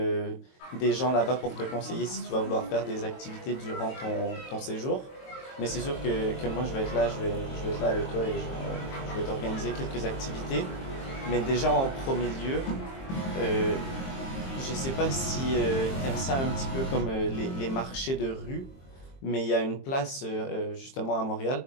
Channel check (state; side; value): late; right; 22 ms